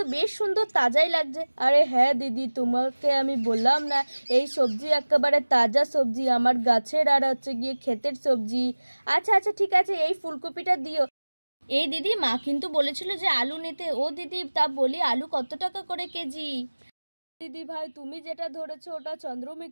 বেশ সুন্দর, তাজাই লাগছে। আরে হ্যাঁ দিদি তোমাকে আমি বললাম না, এই সবজি একেবারে তাজা সবজি, আমার গাছের আর হচ্ছে গিয়ে ক্ষেতের সবজি। আচ্ছা আচ্ছা ঠিক আছে এই ফুলকপিটা দিও। এই দিদি মা কিন্তু বলেছিল যে আলু নিতে। ও দিদি তা বলি আলু কত টাকা করে কেজি? দিদি ভাই তুমি যেটা ধরেছো ওটা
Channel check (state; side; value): inverted; both; correlation -1.00